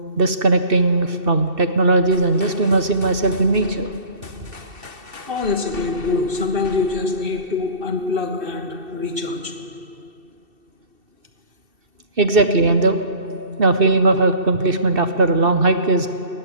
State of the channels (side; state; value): left; late; 2.7 ms